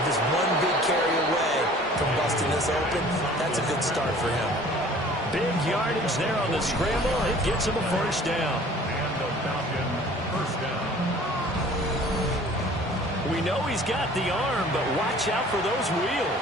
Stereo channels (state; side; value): normal; both; correlation 0.49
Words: Just one big carry away from busting this open. That's a good start for him. Big yardage there on the scramble. It gets him a first down. And the Falcon first down. We know he's got the arm, but watch out for those